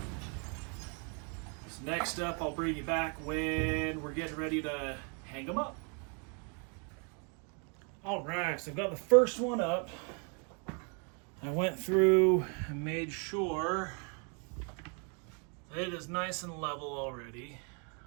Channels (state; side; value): quieter; left; 37.7 dB